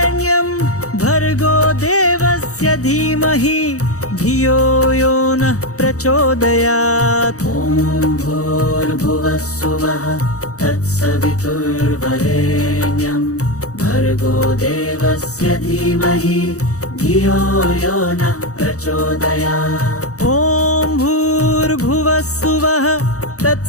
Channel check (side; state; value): right; late; 0.65 ms